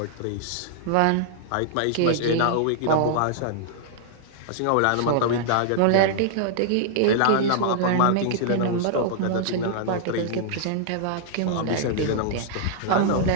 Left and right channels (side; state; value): both; different; correlation -0.01